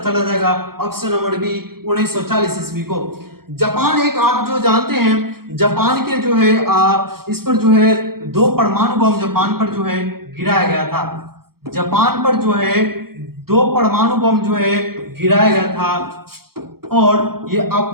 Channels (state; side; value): late; left; 0.94 ms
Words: चला जाएगा ऑप्शन नंबर बी, 1940 ईस्वी को। जापान एक आप जो जानते हैं जापान के जो है इस पर जो है 2 परमाणु बम जापान पर जो है गिराया गया था। जापान पर जो है 2 परमाणु बम जो है गिराया गया था और ये